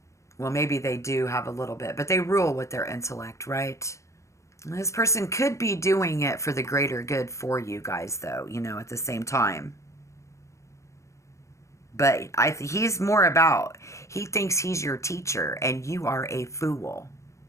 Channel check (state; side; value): late; right; 0.15 ms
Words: Well, maybe they do have a little bit, but they rule with their intellect, right? This person could be doing it for the greater good for you guys, though, you know, at the same time. But he's more about, he thinks he's your teacher and you are a fool.